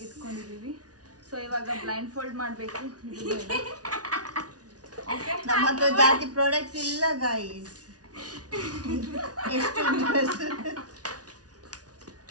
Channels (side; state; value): left; late; 0.68 ms